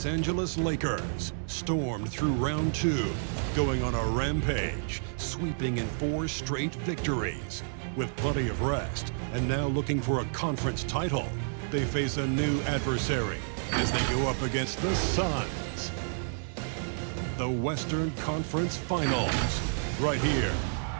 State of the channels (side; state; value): left; silent; digital silence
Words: Angeles Lakers stormed through round 2, going on a rampage, sweeping in 4 straight victories. With plenty of rest, and now looking for a conference title, they face a new adversary as they go up against the SUNS. The Western Conference Finals, right here,